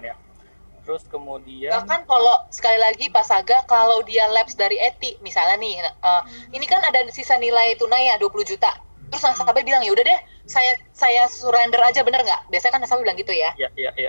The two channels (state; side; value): inverted; both; correlation -1.00